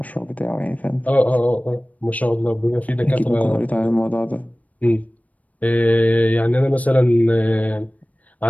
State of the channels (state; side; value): late; right; 0.071 ms